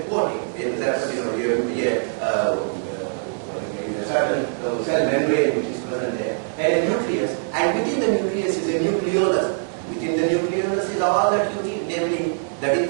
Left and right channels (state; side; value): silent; left; digital silence